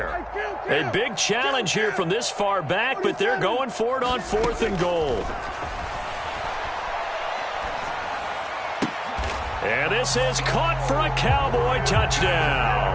A big challenge here from this far back, but they're going for it on 4th and goal. And this is caught for a Cowboy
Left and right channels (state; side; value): identical; both; correlation 1.00